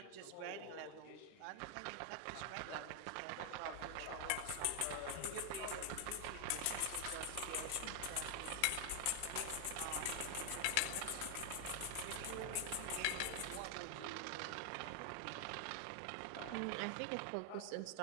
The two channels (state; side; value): different; both; correlation 0.00